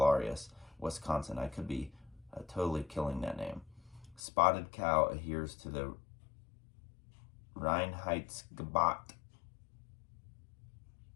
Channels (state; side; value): drops out; right; at 4.2 s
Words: Wisconsin. I could be totally killing that name. Spotted Cow adheres to the Reinheitsgebot